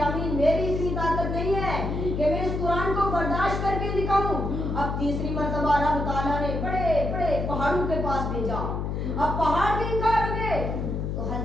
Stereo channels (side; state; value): left; noise; hum, 2 dB below the sound